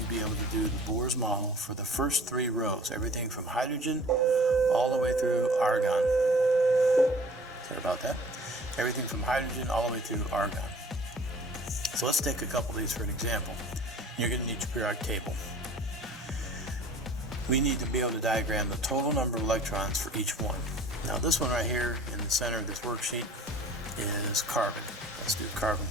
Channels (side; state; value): both; normal; correlation 0.47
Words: be able to do the Bohr's model for the first 3 rows, everything from hydrogen all the way through argon. Sorry about that. Everything from hydrogen all the way through argon. So let's take a couple of these for an example. You're going to need your periodic table. We need to be able to diagram the total number of electrons for each one. Now this one right here in the center of this worksheet is carbon. Let's do carbon